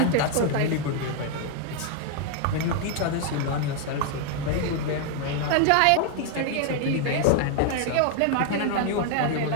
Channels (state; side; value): different; both; correlation 0.00